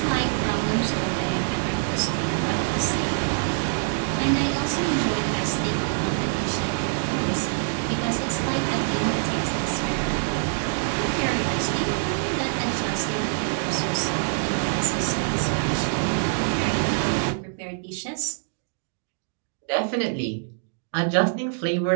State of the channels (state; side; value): silent; left; digital silence